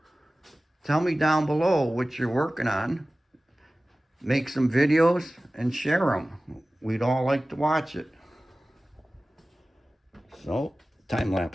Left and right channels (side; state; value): both; normal; correlation 0.97